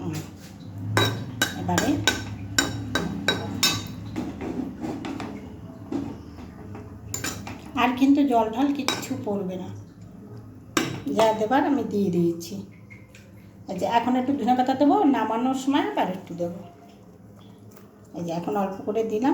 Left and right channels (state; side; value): identical; both; correlation 1.00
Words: এবারে আর কিন্তু জল ঢাল কিচ্ছু পড়বে না, যা দেবার আমি দিয়ে দিয়েছি। এই যে এখন একটু ধনে পাতা দেবো, নামানোর সময় আবার একটু দেবো। এই যে এখন অল্প করে